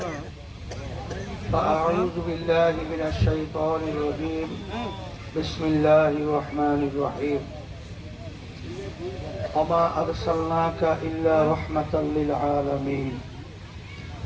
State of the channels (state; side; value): identical; both; correlation 1.00